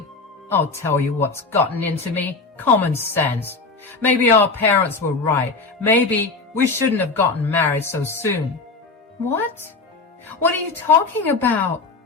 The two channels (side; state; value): right; quieter; 3.9 dB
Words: I'll tell you what's gotten into me. Common sense. Maybe our parents were right. Maybe we shouldn't have gotten married so soon. What? What are you talking about?